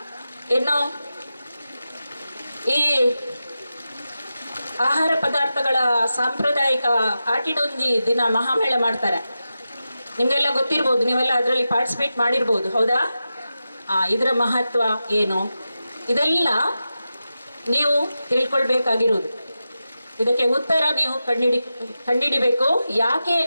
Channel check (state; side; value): inverted; both; correlation -0.91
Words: ಇನ್ನು ಈ ಆಹಾರ ಪದಾರ್ಥಗಳ ಸಾಂಪ್ರದಾಯಿಕ ಆಟಿಡೊಂಜಿ ದಿನ ಮಹಾಮೇಳ ಮಾಡ್ತಾರೆ. ನಿಮಗೆಲ್ಲ ಗೊತ್ತಿರ್ಬೋದು, ನೀವೆಲ್ಲ ಅದರಲ್ಲಿ ಪಾರ್ಟಿಸಿಪೇಟ್ ಮಾಡಿರ್ಬೋದು, ಹೌದಾ? ಇದರ ಮಹತ್ವ ಏನು, ಇದೆಲ್ಲ ನೀವು ತಿಳ್ಕೊಳ್ಬೇಕಾಗಿರೋದು. ಇದಕ್ಕೆ ಉತ್ತರ ನೀವು ಕಂಡಿಡಿಬೇಕು. ಯಾಕೆ